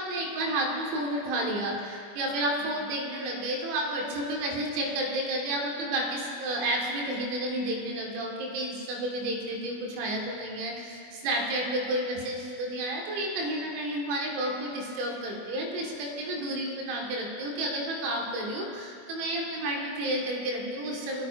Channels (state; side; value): late; left; 24 ms